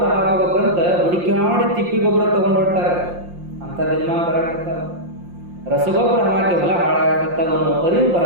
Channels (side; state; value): left; late; 5.7 ms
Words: ಹಾಕಬೇಕಂತ ಹುಡುಕಾಡಿ ತಿಪ್ಪಿ ಗೊಬ್ಬರ ತಗೊಂಡು ಹೊರ್ಟಾರ. ಅಂತ ದಿನಮಾನ ಬರಾಕತ್ತಾವ. ರಸಗೊಬ್ಬರ ಹಾಕಿ ಹೊಲ ಹಾಳಾಗತ್ತವ ಅನ್ನೋ ಅರಿವು